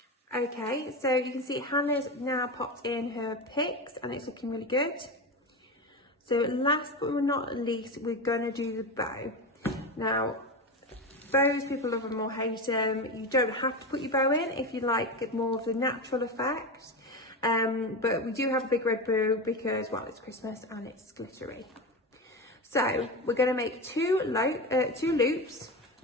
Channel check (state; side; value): normal; both; correlation 0.20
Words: Okay, so you can see Hannah's now popped in her picks and it's looking really good. So last but not least, we're gonna do the bow. Now, bows, people love them or hate them. You don't have to put your bow in if you like more of the natural effect. But we do have a big red bow because, well, it's Christmas and it's glittery. So we're going to make two loops.